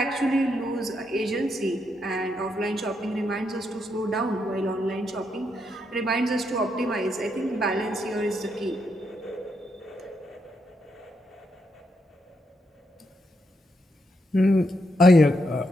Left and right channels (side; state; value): both; normal; correlation 0.80